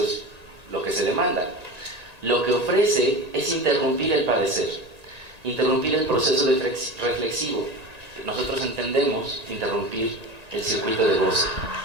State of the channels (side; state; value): left; late; 1.9 ms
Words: es lo que se demanda. Lo que ofrece es interrumpir el padecer, interrumpir el proceso reflexivo. Nosotros entendemos interrumpir el circuito de goce.